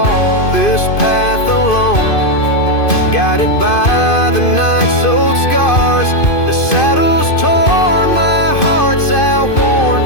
this path alone, guided by the night's old scars. The saddle's torn, my heart's outworn,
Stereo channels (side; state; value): right; late; 2.5 ms